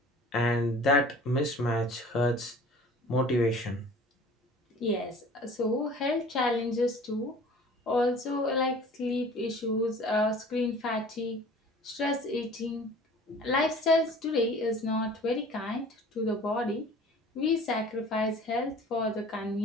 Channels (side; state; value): both; normal; correlation 0.46